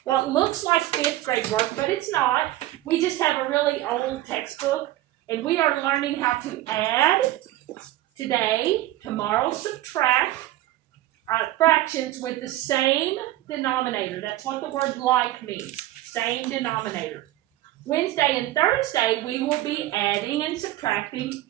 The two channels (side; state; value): left; quieter; 15.4 dB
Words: what looks like 5th grade work, but it's not. We just have a really old textbook, and we are learning how to add today, tomorrow subtract fractions with the same denominator. That's what the word like means, same denominator. Wednesday and Thursday, we will be adding and subtracting